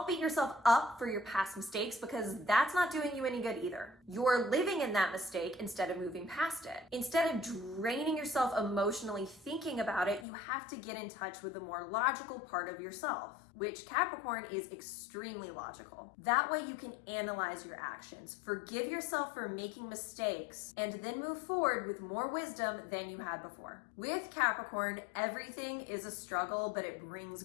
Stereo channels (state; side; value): drops out; right; at 10.2 s